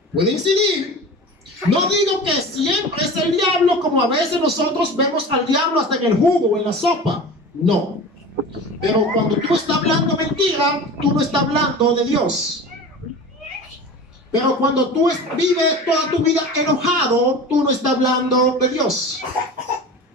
Puede incidir. No digo que siempre es el diablo, como a veces nosotros vemos al diablo hasta en el jugo o en la sopa. No. Pero cuando tú estás hablando mentira, tú no estás hablando de Dios. Pero cuando tú vives toda tu vida enojado, tú no estás hablando de Dios.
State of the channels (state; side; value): normal; both; correlation 0.34